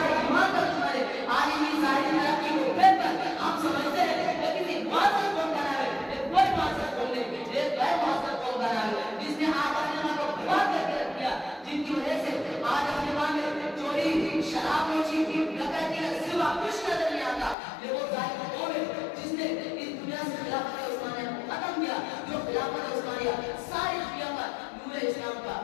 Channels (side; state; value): right; drops out; at 17.6 s